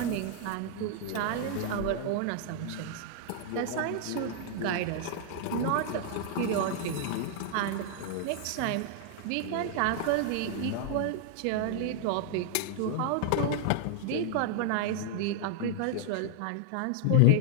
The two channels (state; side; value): different; both; correlation 0.00